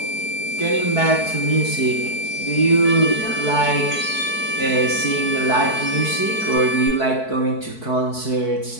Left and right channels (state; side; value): late; right; 4.6 ms